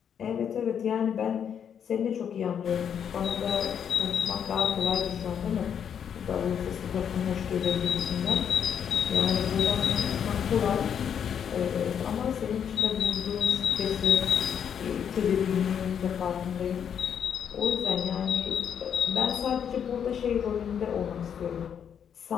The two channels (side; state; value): right; quieter; 8.1 dB